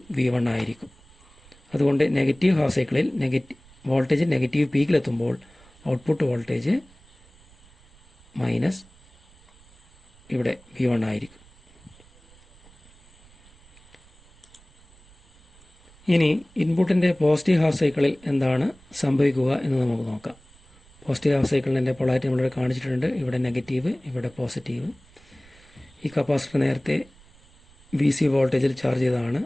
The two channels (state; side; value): noise; right; rumble, 27 dB below the sound